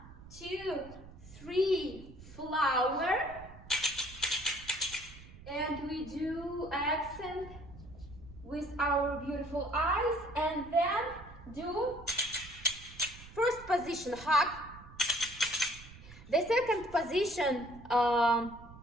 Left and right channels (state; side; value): noise; right; rumble, 17 dB below the sound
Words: 2, 3, flower. And we do accent with our beautiful eyes, and then do first position, hug. The second position,